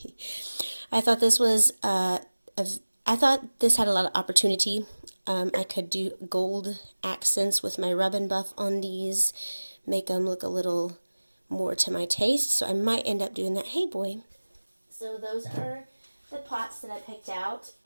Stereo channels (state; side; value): inverted; both; correlation -1.00